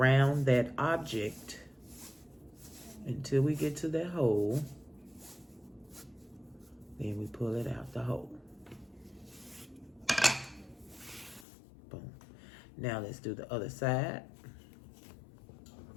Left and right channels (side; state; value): right; drops out; at 11.5 s